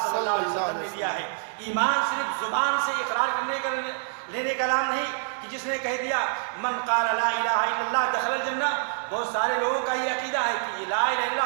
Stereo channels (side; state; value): left; silent; digital silence